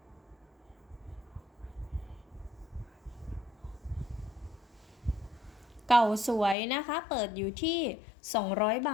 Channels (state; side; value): drops out; right; at 6.6 s